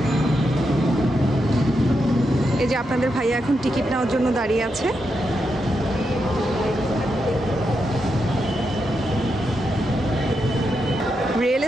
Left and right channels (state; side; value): normal; both; correlation 0.84